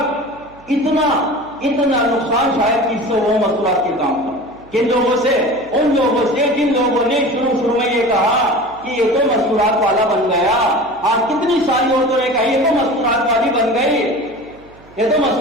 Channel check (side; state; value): right; noise; hum, 26 dB below the sound